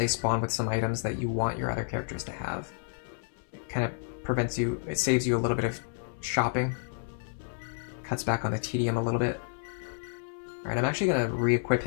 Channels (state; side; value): silent; right; 58 dB below the other